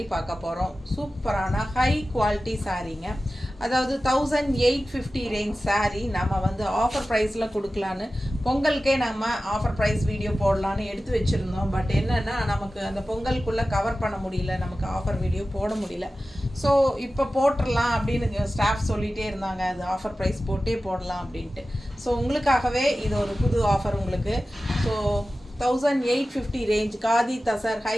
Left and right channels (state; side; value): normal; both; correlation 0.95